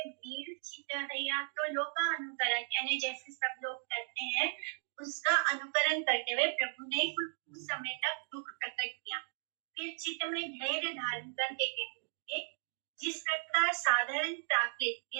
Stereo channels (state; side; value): silent; left; digital silence